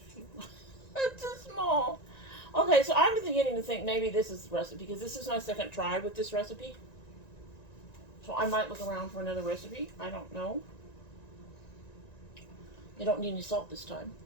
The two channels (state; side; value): late; right; 1.9 ms